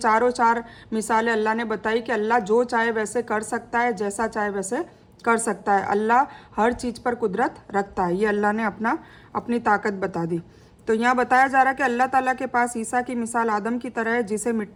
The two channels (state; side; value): identical; both; correlation 1.00